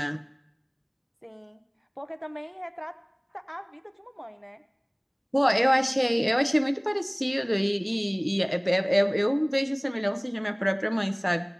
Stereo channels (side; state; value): both; identical; correlation 1.00